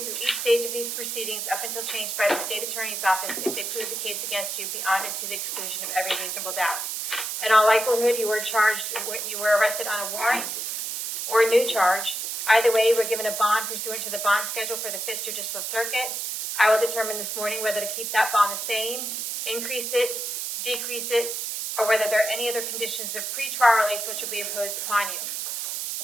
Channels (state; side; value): noise; right; hiss, 3 dB below the sound